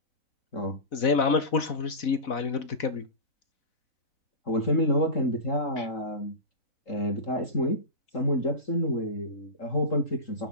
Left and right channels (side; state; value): right; late; 4.0 ms